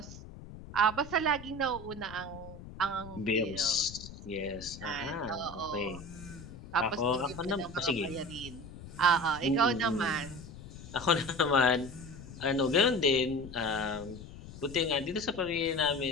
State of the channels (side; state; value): left; noise; rumble, 14 dB below the sound